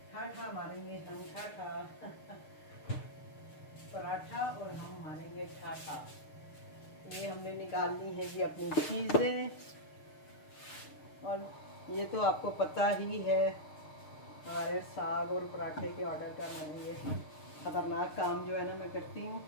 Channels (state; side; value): late; right; 6.6 ms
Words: ठाठा मारेंगे हम, ठाठा पराठा और हम मारेंगे ठाठा। ये हमने निकालनी है जी अपनी चीज़ें, और ये तो आपको पता ही है हमारे साग और पराठे के ऑर्डर का मैंने ये ख़तरनाक काम जो है ना मैं करती हूँ,